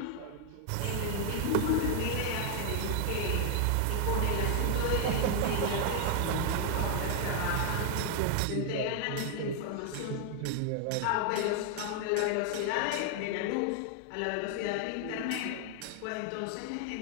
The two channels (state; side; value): different; both; correlation 0.00